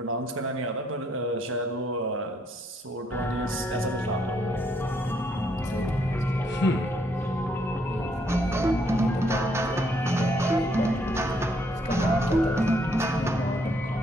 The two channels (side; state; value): both; normal; correlation 0.71